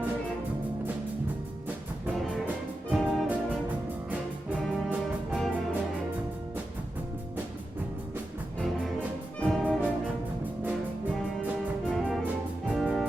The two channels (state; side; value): normal; both; correlation 0.90